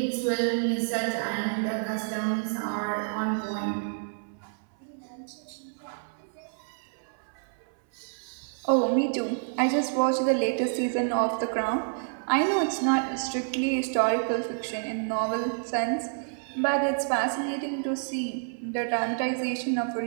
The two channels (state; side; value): silent; left; 59 dB below the other